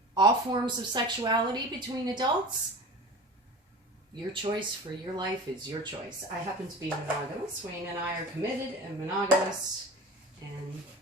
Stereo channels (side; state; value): both; normal; correlation 0.34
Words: all forms of sexuality between adults. Your choice for your life is your choice. I happen to be monogamous. Wayne and I are committed and monogamous. And